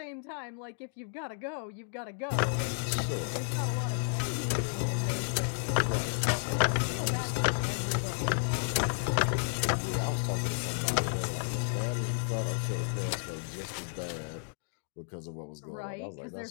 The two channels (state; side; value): silent; right; digital silence